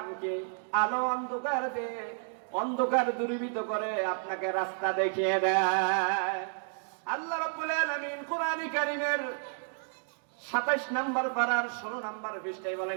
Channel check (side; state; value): left; silent; digital silence